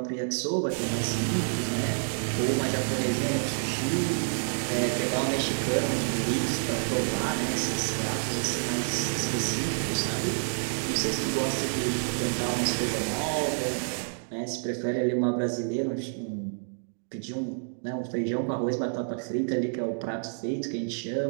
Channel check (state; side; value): silent; left; digital silence